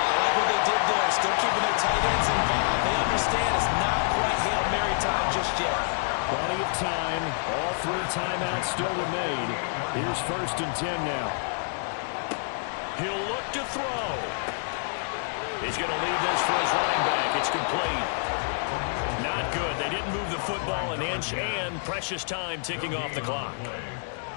I like what they did there, still keeping their tight ends involved. They understand it's not quite Hail Mary time just yet. Plenty of time. All 3 timeouts still remain. Here's 1st and 10 now. He'll look to throw. He's going to leave this for his running back. It's complete. Not good. They didn't move the football an inch, and precious time ticking off the clock.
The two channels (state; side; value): silent; right; digital silence